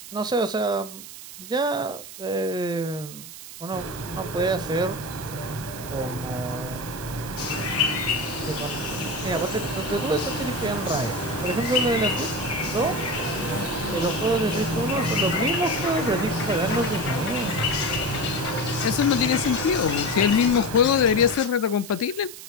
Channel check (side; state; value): right; noise; hiss, 13 dB below the sound